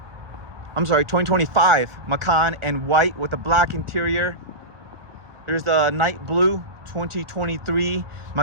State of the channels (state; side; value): late; left; 1.2 ms